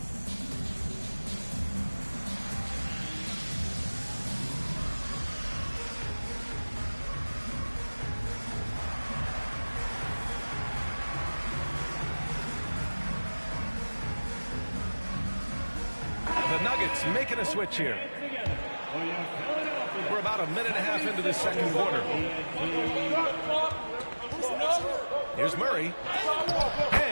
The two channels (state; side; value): inverted; both; correlation -1.00